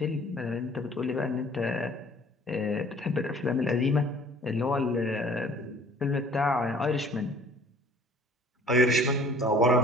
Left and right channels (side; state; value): both; normal; correlation 0.52